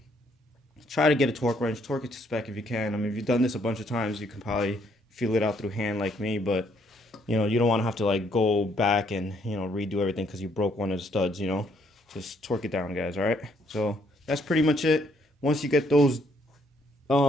try to get a torque wrench. Torque it to spec if you can. I mean, if you've done this a bunch of times, you can probably feel it out through hand like me, but you know, you don't want to have to like go back and, you know, redo everything because you broke one of the studs, you know. Just torque it down, guys. All right, so that's pretty much it. Once you get those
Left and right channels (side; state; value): both; normal; correlation 0.69